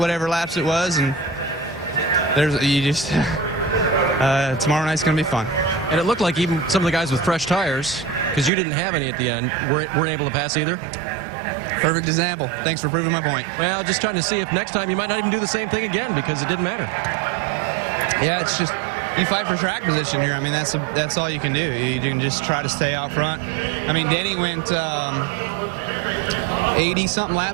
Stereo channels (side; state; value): left; drops out; at 8.5 s